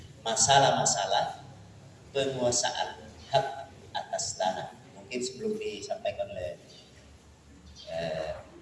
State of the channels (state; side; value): identical; both; correlation 1.00